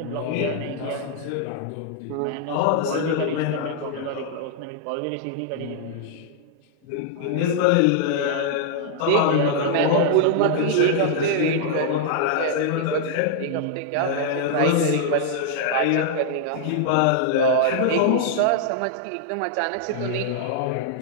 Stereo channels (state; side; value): different; both; correlation -0.01